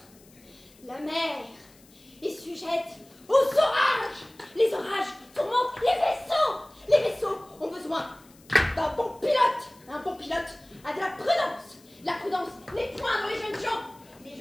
La mer est sujette aux orages. Les orages tourmentent les vaisseaux. Les vaisseaux ont besoin d'un bon pilote. Un bon pilote a de la prudence. La prudence n'est point dans les jeunes gens. Les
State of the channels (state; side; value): noise; left; hiss, 27 dB below the sound